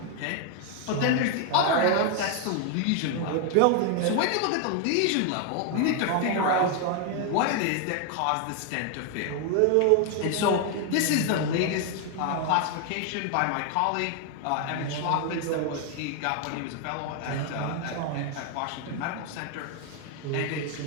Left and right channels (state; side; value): different; both; correlation 0.00